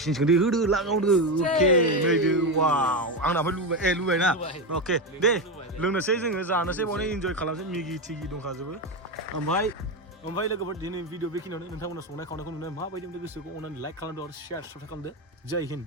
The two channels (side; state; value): both; normal; correlation 0.13